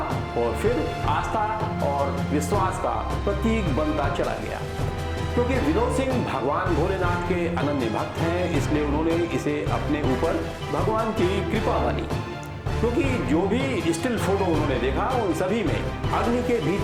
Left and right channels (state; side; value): identical; both; correlation 1.00